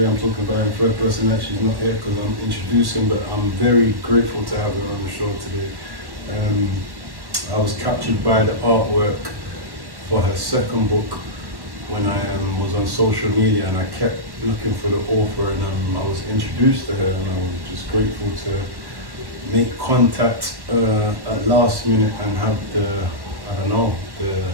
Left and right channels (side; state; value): left; late; 1.1 ms